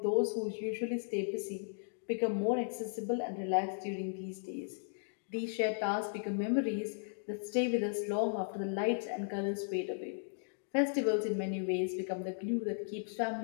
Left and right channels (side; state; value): right; silent; digital silence